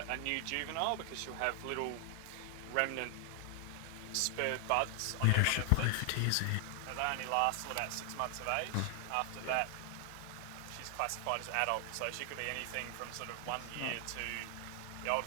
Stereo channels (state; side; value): different; both; correlation 0.00